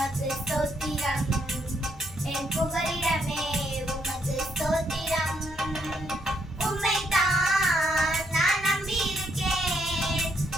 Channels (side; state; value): both; normal; correlation 0.75